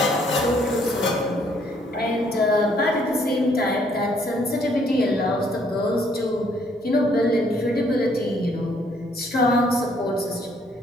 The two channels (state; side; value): normal; both; correlation 0.66